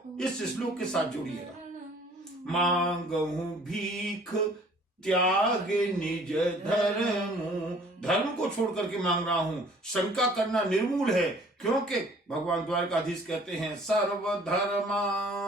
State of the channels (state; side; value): normal; both; correlation 0.54